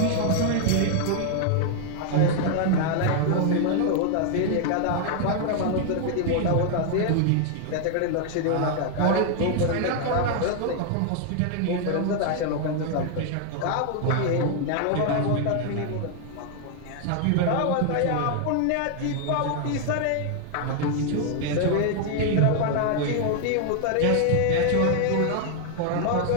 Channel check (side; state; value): both; different; correlation 0.00